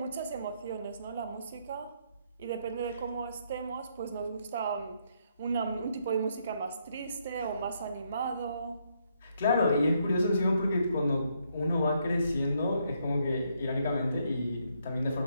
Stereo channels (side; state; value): both; inverted; correlation -0.74